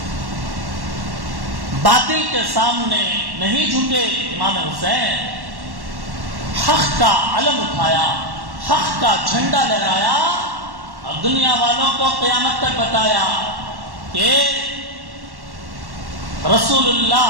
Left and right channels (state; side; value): late; left; 1.1 ms